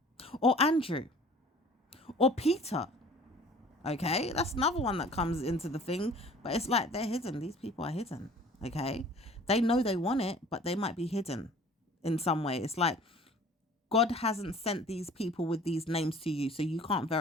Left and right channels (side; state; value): both; normal; correlation 0.48